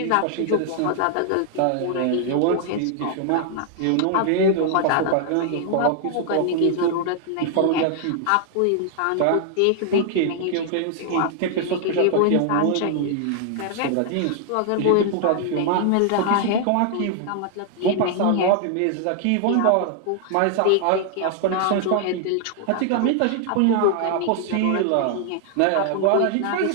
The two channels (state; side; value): different; both; correlation 0.00